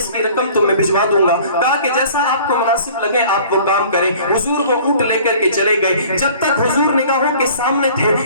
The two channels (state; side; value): inverted; both; correlation -0.49